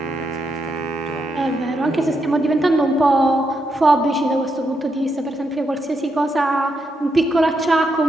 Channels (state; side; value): normal; both; correlation 0.82